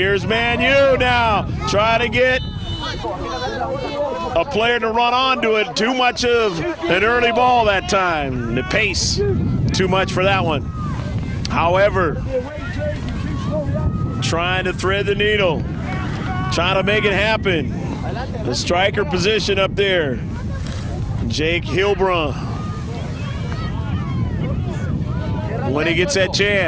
Man U now, trying to get a player to run onto it. Too much of an early ball that time. The pace, too much for that one. However, trying to thread the needle, trying to make it happen. The striker position up there, Jake Hilbrun. When he gets that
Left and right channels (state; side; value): identical; both; correlation 1.00